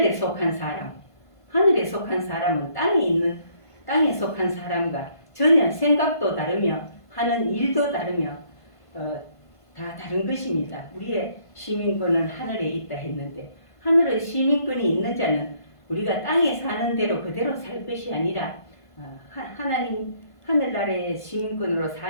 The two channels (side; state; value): right; late; 1.5 ms